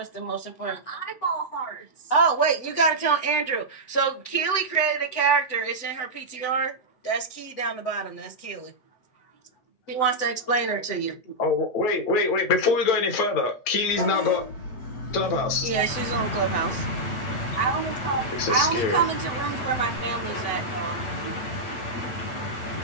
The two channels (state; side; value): late; right; 8.0 ms